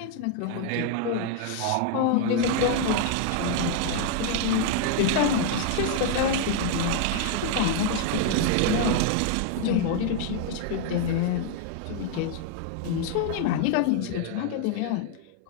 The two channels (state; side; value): different; both; correlation 0.00